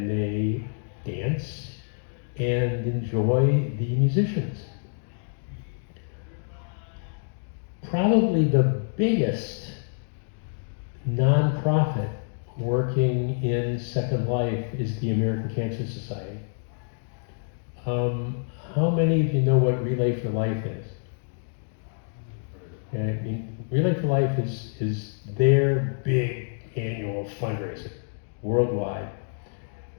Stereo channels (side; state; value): right; silent; digital silence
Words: they dance and enjoy the musicians. probably the biggest nonprofit working in Second Life is the American Cancer Society. How many of you know what Relay for Life is? Okay, I mean, Relay for Life is their big annual fundraiser worldwide.